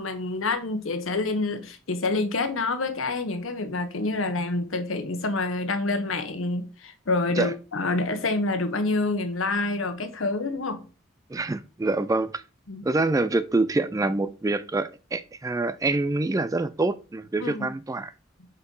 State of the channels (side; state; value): both; normal; correlation 0.38